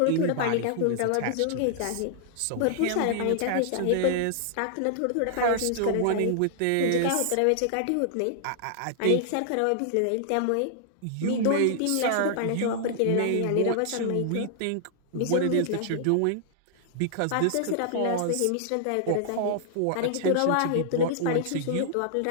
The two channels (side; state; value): both; different; correlation -0.01